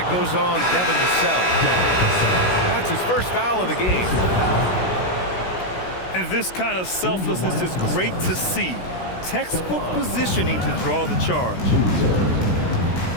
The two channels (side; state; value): right; late; 16 ms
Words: goes on Devin Vassell. That's his first foul of the game. And this kind of selflessness is great to see. Textbook positioning to draw the charge.